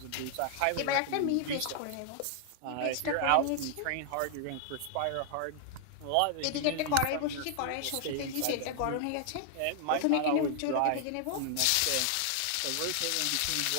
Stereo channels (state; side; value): different; both; correlation 0.00